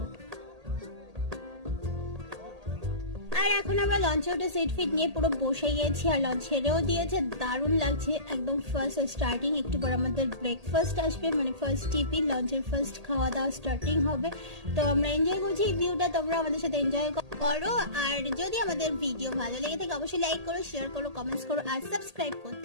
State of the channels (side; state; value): left; late; 1.8 ms